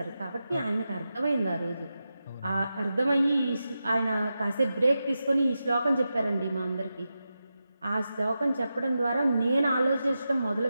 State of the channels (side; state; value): both; inverted; correlation -0.90